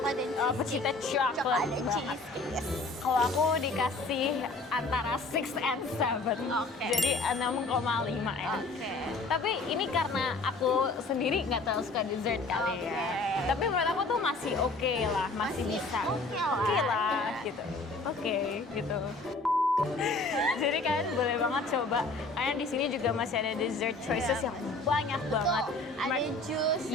dan cheesecake. Pecinta coklat dan banget. cheesecake. Yes. Kalau aku dikasih antara 6 and 7. Oke. Jadi 6,5 ya. Oke. Tapi ini karena aku sendiri nggak terlalu suka dessert kali Oke. ya. Tapi menurut aku tuh masih oke lah, masih bisa. oke lah. Oke lah, Ya. gitu. Oke, gitu. Jadi kalian boleh banget coba. Karena di sini juga masih ada dessert choices Iya. yang banyak banget. Betul. Ada jus,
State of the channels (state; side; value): quieter; right; 3.3 dB